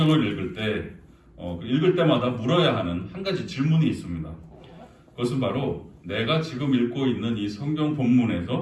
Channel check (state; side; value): identical; both; correlation 1.00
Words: 읽을 때 읽을 때마다 물어야 하는 한 가지 질문이 있습니다. 그것은 바로 내가 지금 읽고 있는 이 성경